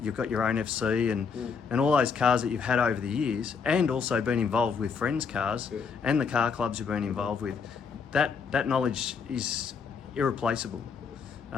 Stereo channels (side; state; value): right; quieter; 5.8 dB